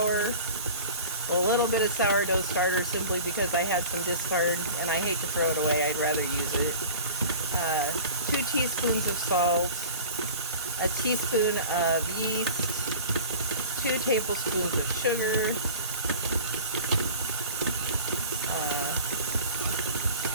a little bit of sourdough starter simply because I had some discard and I hate to throw it away, I'd rather use it. 2 teaspoons of salt, a teaspoon of yeast, 2 tablespoons of sugar,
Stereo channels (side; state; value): both; inverted; correlation -0.40